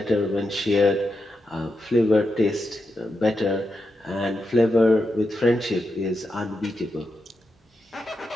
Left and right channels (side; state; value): both; normal; correlation 0.86